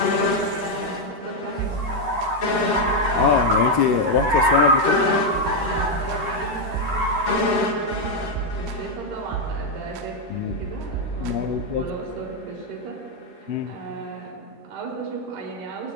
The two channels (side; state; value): left; late; 13 ms